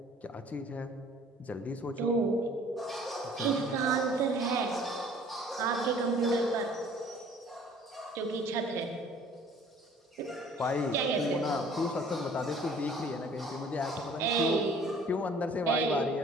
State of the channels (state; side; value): normal; both; correlation 0.53